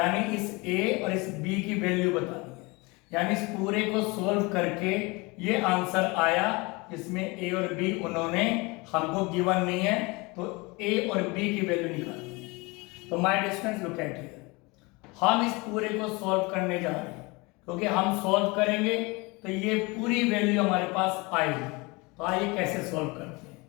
इस ए और इस बी की वैल्यू बतानी है। यानी इस पूरे को सोल्व करके ये आंसर आया, इसमें ए और बी उन्होंने हमको गिवन नहीं है, तो ए और बी की वैल्यू निकालनी है। तो my distance look at here, हम इस पूरे को सॉल्व करने जा रहे हैं, क्योंकि हम सॉल्व करेंगे तो ये पूरी वैल्यू हमारे पास आएगी। तो आइए कैसे सॉल्व करते हैं।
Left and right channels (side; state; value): right; quieter; 25.8 dB